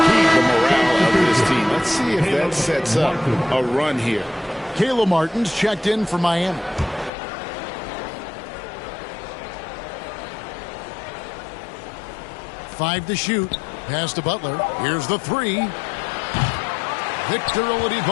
morale of this team. Let's see if that sets up a run here. Caleb Martin's checked in for Miami. Five to shoot. Pass to Butler. Here's the 3. Victor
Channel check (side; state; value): right; drops out; at 7.1 s